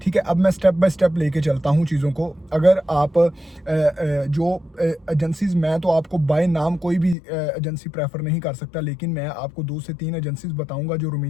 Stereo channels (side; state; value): right; drops out; at 7.2 s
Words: ठीक है, अब मैं स्टेप बाय स्टेप लेके चलता हूँ चीज़ों को। अगर आप जो एजेंसीज, मैं तो आपको बाय नाम कोई भी एजेंसी प्रेफर नहीं कर सकता, लेकिन मैं आपको 2 से 3 एजेंसीज बताऊंगा जो